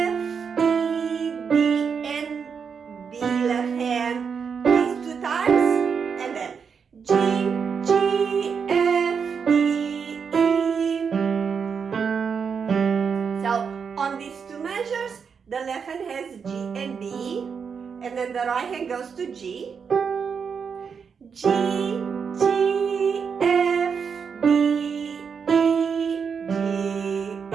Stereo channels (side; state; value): left; quieter; 6.3 dB